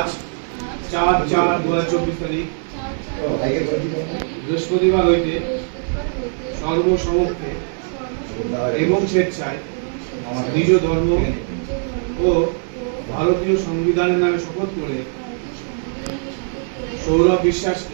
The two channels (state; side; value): silent; left; 64 dB below the other